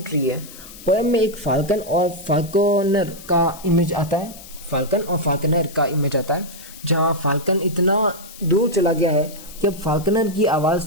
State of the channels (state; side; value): noise; left; hiss, 17 dB below the sound